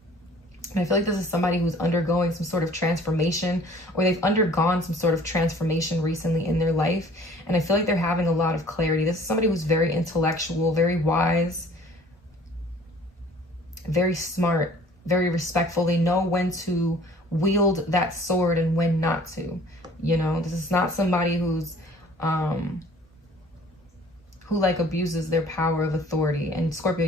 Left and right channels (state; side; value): normal; both; correlation 0.52